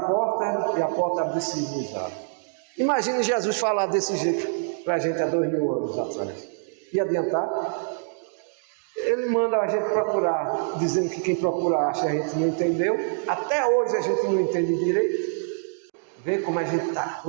e a porta abre-se-vos-á. Imagine Jesus falar desse jeito para a gente há 2000 anos atrás. E adiantar? Ele manda a gente procurar, dizendo que quem procura acha, a gente não entendeu. Até hoje a gente não entende direito. Vê como a gente está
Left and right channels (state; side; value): silent; left; 61 dB below the other